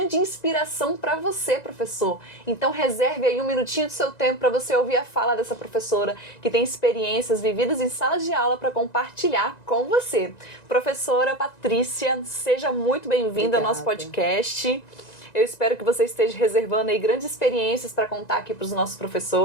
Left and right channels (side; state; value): right; late; 1.9 ms